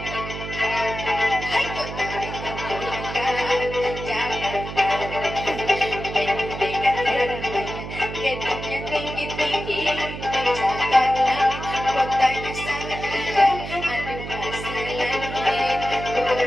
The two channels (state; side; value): noise; right; hum, 8 dB below the sound